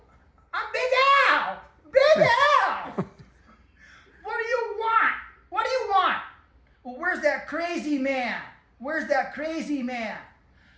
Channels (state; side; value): identical; both; correlation 1.00